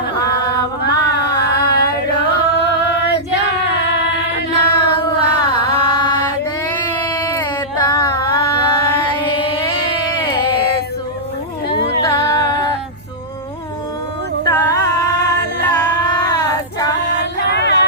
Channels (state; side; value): normal; both; correlation -0.12